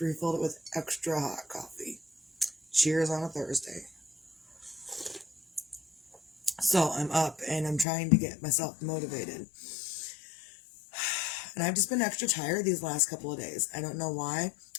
refilled it with extra hot coffee. Cheers on a Thursday. So I'm up, and I'm trying to get myself motivated. And I've just been extra tired these last couple of days. I don't know why.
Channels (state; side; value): drops out; right; at 7.9 s